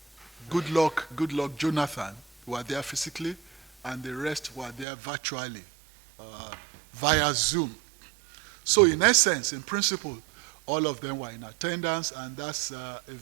Goodluck Jonathan were there physically, and the rest were there virtually via Zoom. So in essence, in principle, all of them were in attendance, and that's a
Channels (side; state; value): left; drops out; at 4.9 s